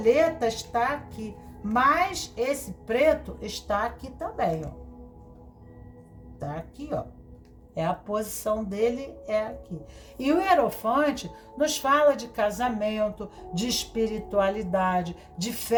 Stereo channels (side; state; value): both; identical; correlation 1.00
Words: está aqui, mas esse preto está aqui também, ó. Tá aqui, ó. É a posição dele, é aqui. E o Hierophante nos fala de casamento, de espiritualidade, de